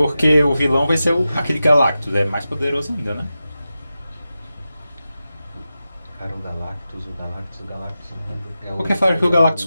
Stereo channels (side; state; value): both; inverted; correlation -0.93